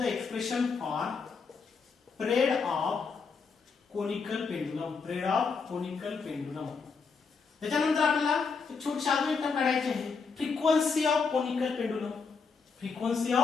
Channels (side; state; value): right; quieter; 5.1 dB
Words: expression for period of conical pendulum. Period of conical pendulum. त्याच्यानंतर आपल्याला एक छोटीशी अजून एक term काढायची आहे frequency of conical pendulum. Frequency